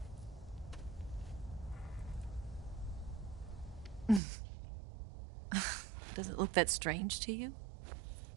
Does it look that strange to you?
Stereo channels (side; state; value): left; drops out; at 4.2 s